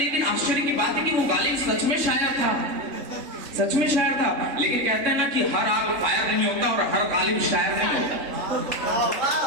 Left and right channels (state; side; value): late; left; 3.6 ms